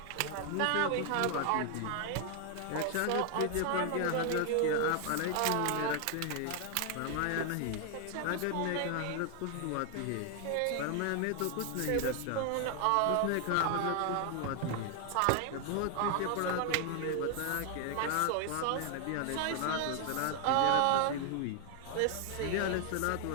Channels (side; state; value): both; different; correlation 0.00